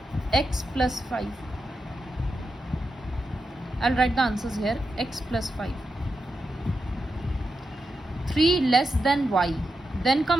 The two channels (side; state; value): both; normal; correlation 0.88